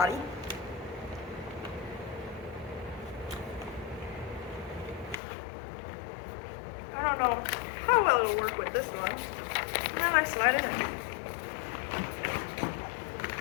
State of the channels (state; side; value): drops out; right; at 5.2 s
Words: I don't know how well it'll work with this one. And then I slide it in.